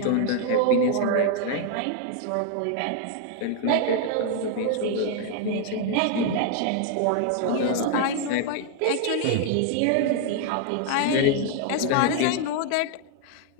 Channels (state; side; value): different; both; correlation 0.00